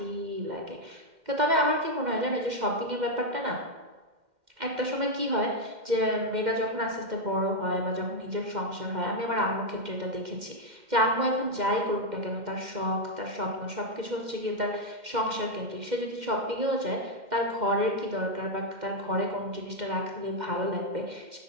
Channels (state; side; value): late; left; 2.1 ms